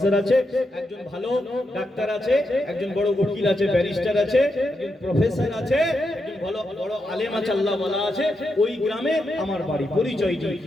আছে, একজন ভালো ডাক্তার আছে, একজন বড় উকিল আছে, ব্যারিস্টার আছে, একজন প্রফেসর আছে, একজন ভালো বড় আলেম আছে, আল্লাহ ওয়ালা আছে, ওই গ্রামে আমার বাড়ি, পরিচয় দিই,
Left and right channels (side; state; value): both; normal; correlation 0.84